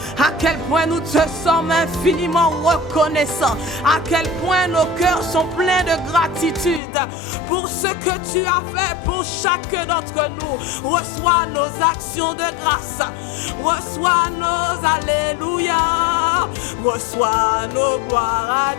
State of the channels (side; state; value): right; drops out; at 6.8 s